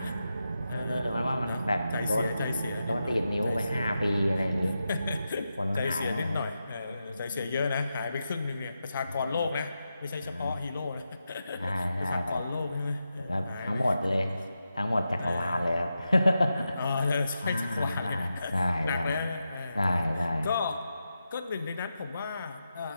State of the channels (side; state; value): both; inverted; correlation -0.89